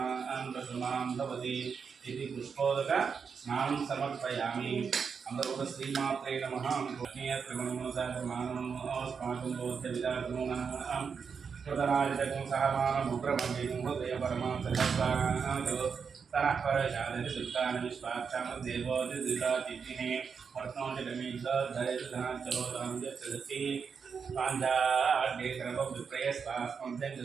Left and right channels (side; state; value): left; quieter; 6.0 dB